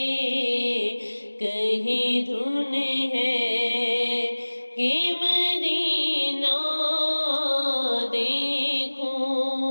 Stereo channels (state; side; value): inverted; both; correlation -1.00